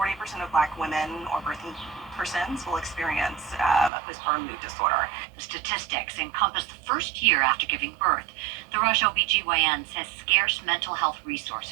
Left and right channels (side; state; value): left; drops out; at 3.9 s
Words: of Black women or birthing persons will experience a postpartum mood disorder. The statistics encompass the first year after giving birth. The Rush OBGYN says scarce mental health